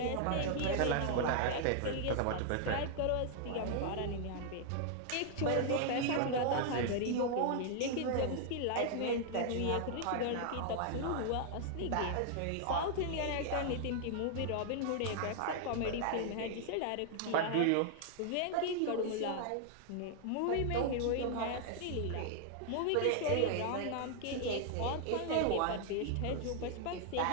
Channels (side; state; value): both; different; correlation 0.00